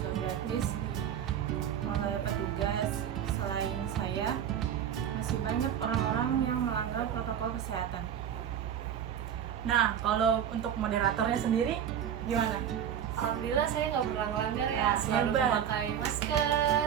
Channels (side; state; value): left; quieter; 9.1 dB